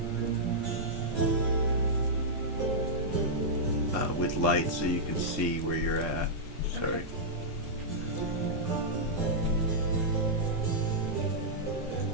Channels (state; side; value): normal; both; correlation -0.10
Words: with light. light so you can see where you're at. Sorry.